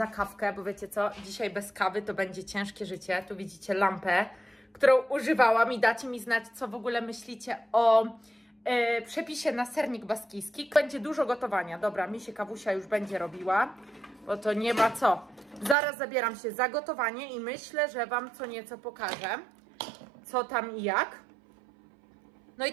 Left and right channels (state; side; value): drops out; left; at 15.8 s